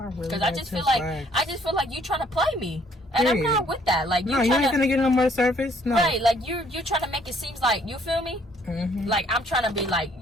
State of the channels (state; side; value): normal; both; correlation 0.64